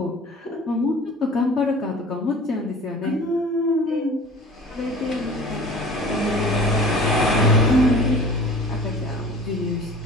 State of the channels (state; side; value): normal; both; correlation 0.43